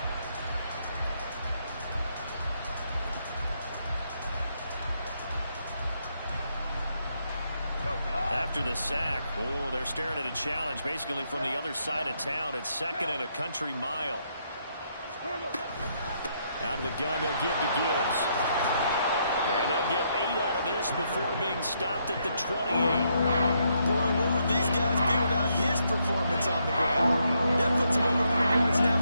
After the sack, oh, they're staring at a challenge basically from the other side of town. It's 2nd and a country mile. Out of the gun, they'll give to Gibbs. And they'll get 8 out of this before being stopped at the 28. Boy, where would these guys be without his performance on the ground? That puts him over 100 yards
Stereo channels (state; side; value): inverted; both; correlation -0.76